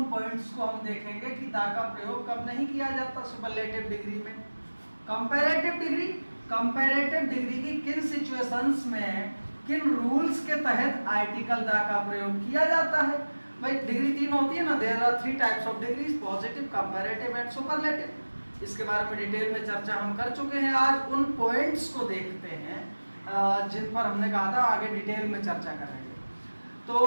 पॉइंट्स को हम देखेंगे कि द का प्रयोग कब नहीं किया जाता सुपरलेटिव डिग्री में। कंपैरेटिव डिग्री की किन सिचुएशंस में, किन रूल्स के तहत आर्टिकल द का प्रयोग किया जाता है। भाई डिग्री 3 होती है ना, there are 3 types of degrees, positive, comparative and superlative. इसके बारे में डिटेल में चर्चा हम कर चुके हैं। आज उन पॉइंट्स को देखते हैं जिन पर हमने कहा था आगे डिटेल में चर्चा करेंगे। तो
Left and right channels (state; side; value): inverted; both; correlation -1.00